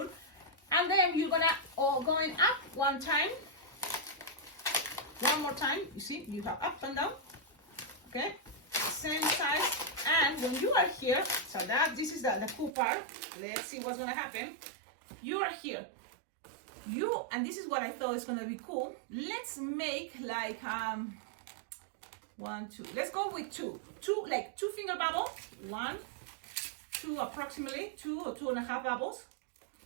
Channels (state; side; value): drops out; left; at 12.8 s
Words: and then you're gonna going up one time, one more time. You see, you have up and down. Okay, same size. And when you are here, so that this is the cool part. Let's see what's gonna happen. You are here. And this is what I thought is gonna be cool. Let's make like 1, 2. Let's go with 2, like 2 finger bubble. 1, 2, approximately 2 or 2.5 bubbles,